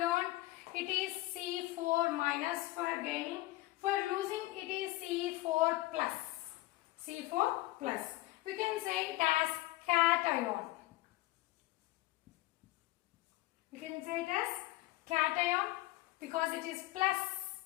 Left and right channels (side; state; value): right; quieter; 18.5 dB